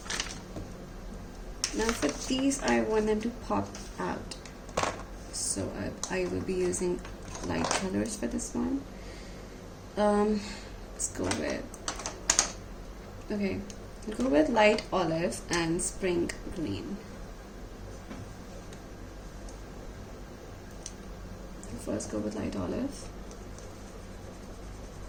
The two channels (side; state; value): both; identical; correlation 1.00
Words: Now for these, I want them to pop out, so I will be using light colors for this one. Let's go with, okay, I'll go with light olive and spring green. First go with light olive,